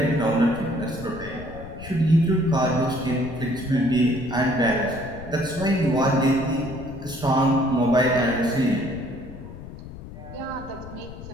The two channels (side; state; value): left; noise; rumble, 13 dB below the sound